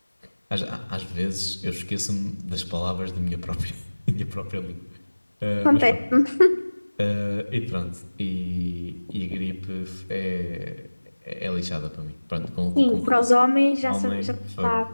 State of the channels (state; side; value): inverted; both; correlation -1.00